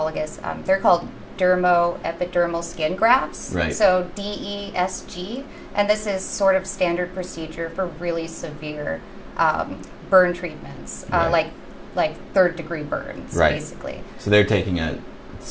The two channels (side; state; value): both; identical; correlation 1.00